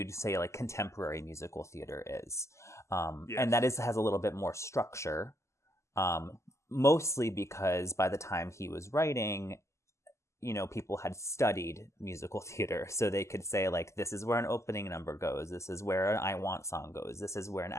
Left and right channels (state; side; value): late; right; 0.13 ms